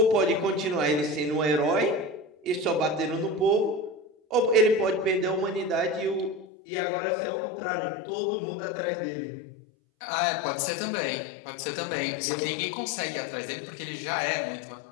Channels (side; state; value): right; drops out; at 6.5 s